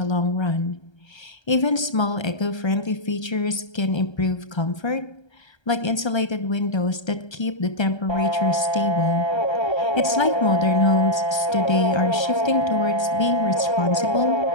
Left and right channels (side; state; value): right; late; 1.3 ms